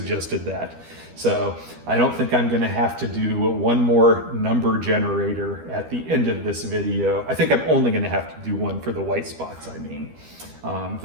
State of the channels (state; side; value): late; left; 12 ms